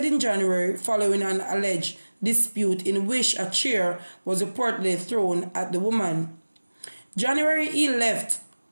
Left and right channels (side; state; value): both; inverted; correlation -1.00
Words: in January following an alleged dispute in which a chair was reportedly thrown at the woman. January, he lifted